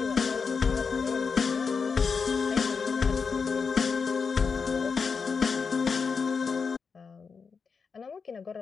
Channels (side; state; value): right; quieter; 5.4 dB